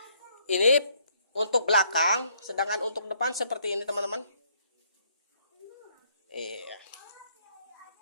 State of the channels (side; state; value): both; inverted; correlation -0.67